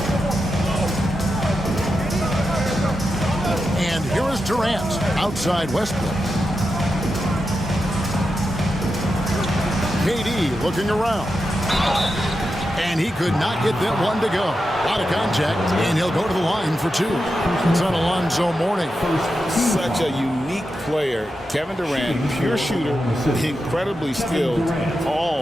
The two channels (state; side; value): normal; both; correlation 0.88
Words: And here is Durant outside Westbrook. KD looking around. And he could not get that one to go. A lot of contact, and he'll go to the line for 2. It's on Alonzo Mourning. Such a unique player. Kevin Durant, pure shooter, incredibly skilled,